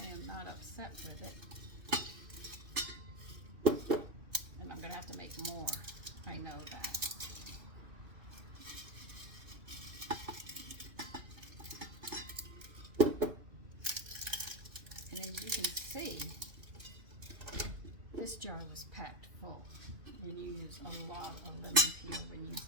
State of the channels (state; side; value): late; left; 2.6 ms